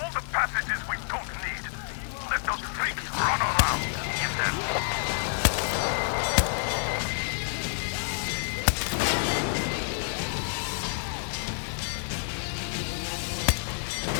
the passages we don't need. Let those freaks run around. Get them!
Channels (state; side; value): silent; right; digital silence